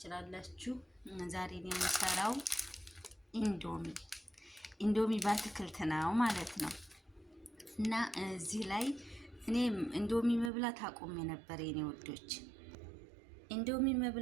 ዛሬ የምሰራው ኢንዶሚ በአትክልት ነው ማለት ነው። እና እዚህ ላይ እኔ ኢንዶሚ መብላት አቁሜ ነበር የኔ ወዶች፣ ኢንዶሚ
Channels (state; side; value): drops out; left; at 10.5 s